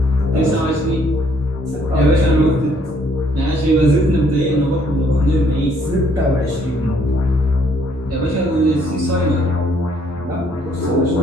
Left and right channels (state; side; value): normal; both; correlation 0.66